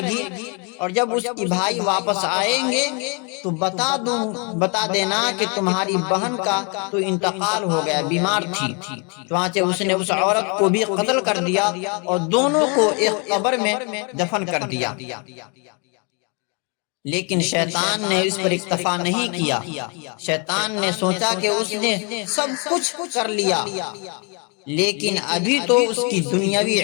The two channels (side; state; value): right; quieter; 34.2 dB